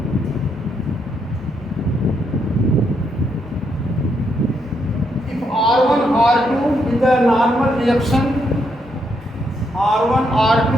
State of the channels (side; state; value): both; normal; correlation 0.77